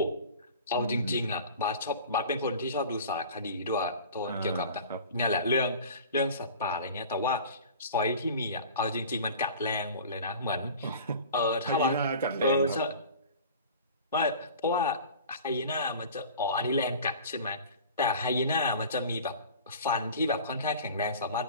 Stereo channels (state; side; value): inverted; both; correlation -0.40